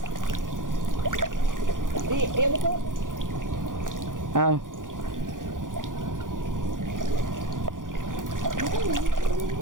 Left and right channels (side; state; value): left; late; 0.89 ms